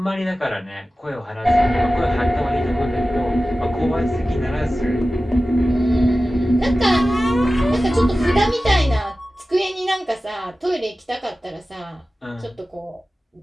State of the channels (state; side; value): normal; both; correlation 0.95